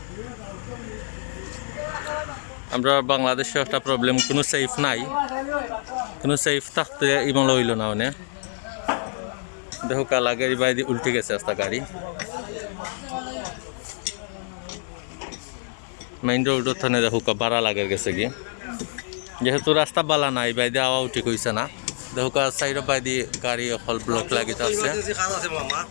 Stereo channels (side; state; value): right; silent; digital silence